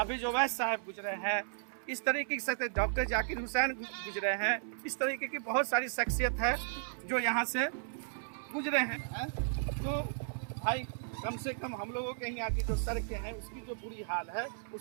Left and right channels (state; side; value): silent; left; 54 dB below the other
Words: ओवैस साहब गुजरे हैं, इस तरीके से डॉक्टर जाकिर हुसैन गुजरे हैं। इस तरीके की बहुत सारी शख्सियत है जो यहाँ से गुजरे हैं। तो भाई कम से कम हम लोगों के यहाँ की जो सड़कें हैं उसकी जो बुरी हाल है